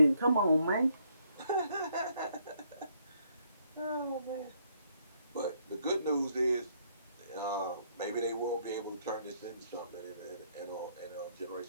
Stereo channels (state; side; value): inverted; both; correlation -0.70